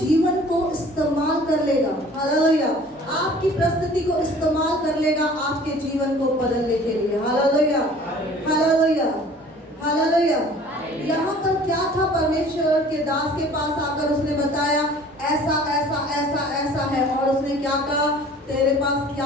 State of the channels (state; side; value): normal; both; correlation 0.49